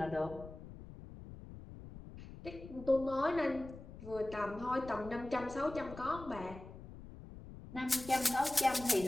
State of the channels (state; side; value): noise; left; rumble, 14 dB below the sound